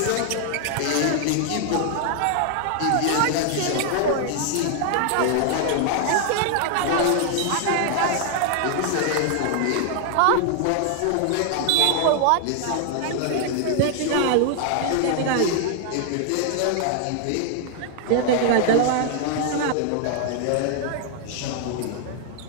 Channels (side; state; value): both; different; correlation 0.00